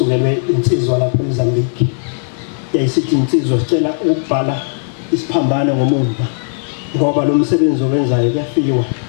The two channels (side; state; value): right; silent; digital silence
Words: insizwa lapha eMozambique yayisithi insizwa sicela ukubhala isiphambano ngomumva ngoba lo msebenzi owenzayo kuyafiwa